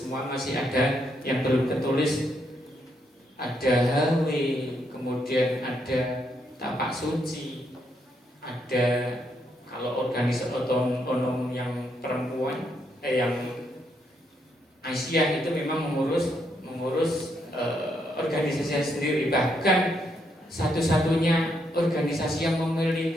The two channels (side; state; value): both; normal; correlation 0.76